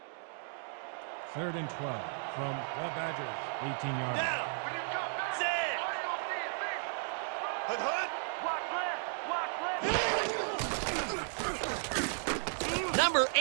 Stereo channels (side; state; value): left; silent; 55 dB below the other